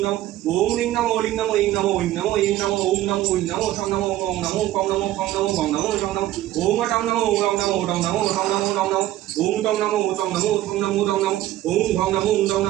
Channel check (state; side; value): quieter; left; 14.4 dB